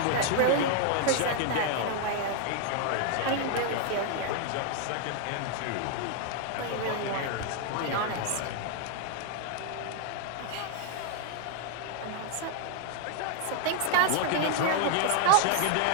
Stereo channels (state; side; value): different; both; correlation 0.00